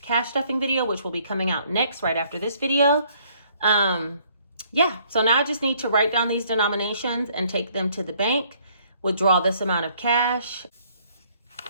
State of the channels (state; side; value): inverted; both; correlation -0.64